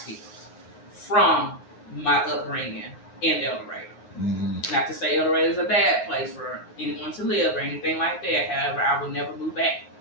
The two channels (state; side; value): late; right; 9.5 ms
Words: from my upbringing in El Dorado. Not to say El Dorado is a bad place for anyone to live or anything like that. However, I would never move back